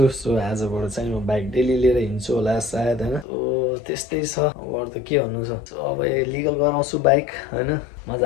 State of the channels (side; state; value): right; drops out; at 3.2 s